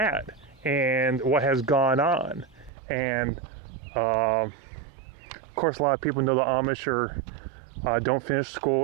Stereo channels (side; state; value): left; drops out; at 2.7 s